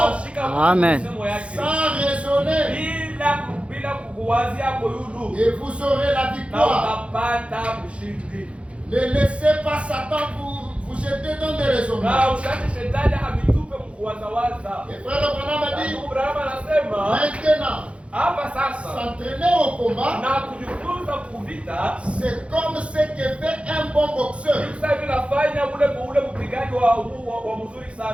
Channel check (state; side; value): late; left; 0.061 ms